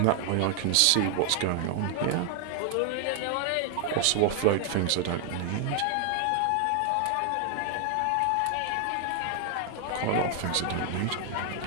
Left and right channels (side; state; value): both; different; correlation 0.00